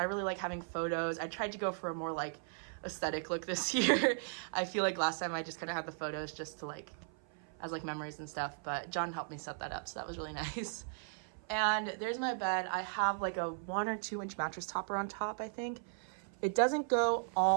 really like having photos. I tried to go for a more like aesthetic look this year. I feel like last time I just kind of had the photos just to like, as like memories and stuff, but John helped me set that up, so that was really nice. And there's my bed. I have like a 1 or 2 inch mattress topper on top, I think. It doesn't go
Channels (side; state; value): left; silent; 53 dB below the other